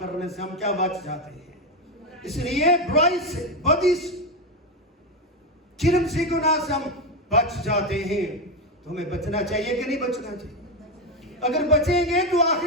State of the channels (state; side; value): normal; both; correlation 0.11